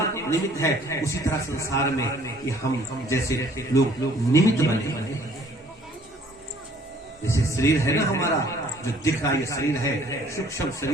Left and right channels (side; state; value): both; normal; correlation 0.57